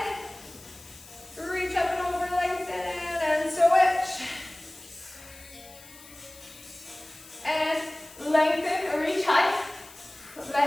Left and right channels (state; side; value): noise; left; hiss, 20 dB below the sound